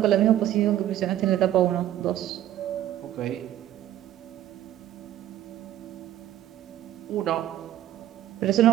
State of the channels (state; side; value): quieter; left; 12.4 dB